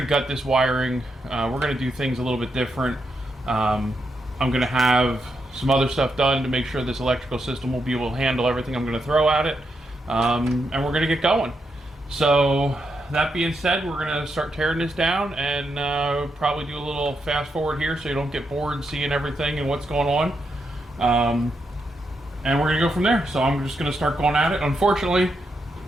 gut this wiring. We're going to do things a little bit different. I'm going to have some other stuff done to make sure this electrical system will be able to handle everything I'm going to throw at it. And we're going to get going. So that being said, we're going to start tearing this down and probably do a little fast forward here so you don't get bored seeing everything and what's going on. And we're going to go from there. So I'm just going to start going at it. Unfortunately,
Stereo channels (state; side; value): normal; both; correlation 0.82